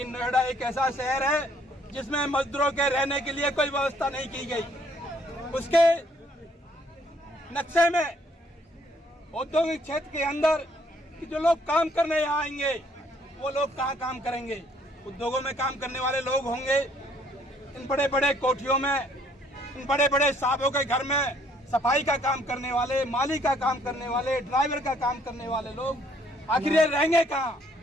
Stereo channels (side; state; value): both; normal; correlation 0.65